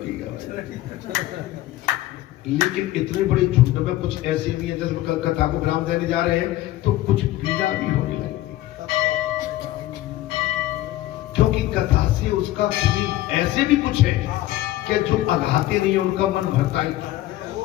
का, लेकिन इतने बड़े झुंड में कुछ ऐसे भी है जैसे कथा को ब्राह्म देने जा रहे हैं तो कुछ पीड़ा भी होने लगी, क्योंकि कथा से उसका ऐसे भी कुछ है कि जो अघाते नहीं उनका मन भरता ही था।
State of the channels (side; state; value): right; quieter; 15.5 dB